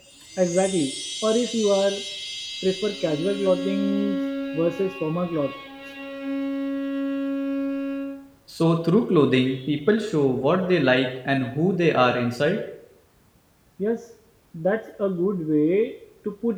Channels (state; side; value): identical; both; correlation 1.00